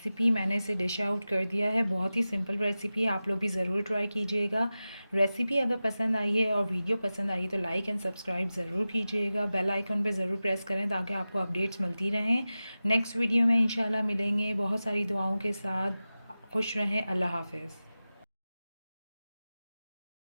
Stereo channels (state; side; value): inverted; both; correlation -0.95